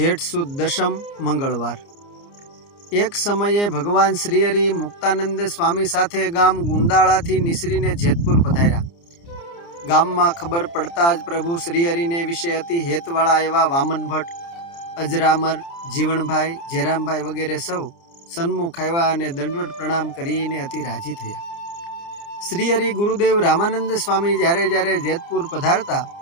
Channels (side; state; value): right; late; 29 ms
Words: સુદ દશમ મંગળવાર। એક સમયે ભગવાન શ્રીહરિ મુક્તાનંદ સ્વામી સાથે ગામ ગુંદાળાથી નિસરીને જેતપુર પધાર્યા। ગામમાં ખબર પડતા જ પ્રભુ શ્રીહરિને વિશે અતિ હેતવાળા એવા વામન ભટ્ટ, અજરામર, જીવણભાઈ, જેરામભાઈ વગેરે સૌ સન્મુખ આવ્યા અને દંડવત પ્રણામ કરીને અતિ રાજી થયા। શ્રીહરિ ગુરુદેવ રામાનંદ સ્વામી જ્યારે જ્યારે જેતપુર પધારતા